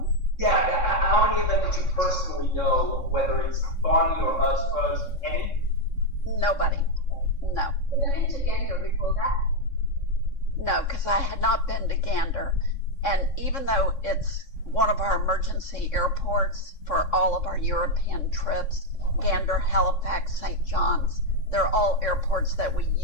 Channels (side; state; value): right; late; 3.6 ms